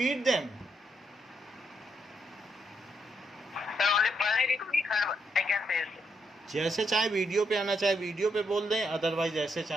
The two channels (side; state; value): both; normal; correlation 0.78